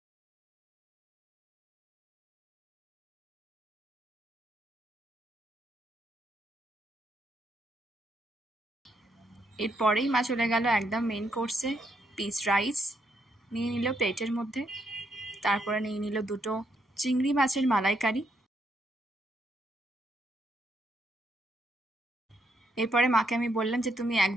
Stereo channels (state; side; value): normal; both; correlation 0.76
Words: এরপরেই মা চলে গেল একদম মেন কোর্সে। পিস রাইস নিয়ে নিল প্লেটের মধ্যে, তারপরে নিয়ে নিল 2টো চিংড়ি মাছের মালাইকারি। এরপরে মাকে আমি বললাম যে তুমি